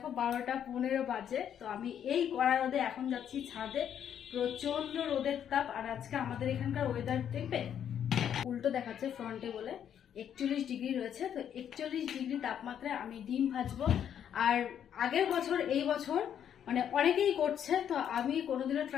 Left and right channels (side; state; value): right; quieter; 9.2 dB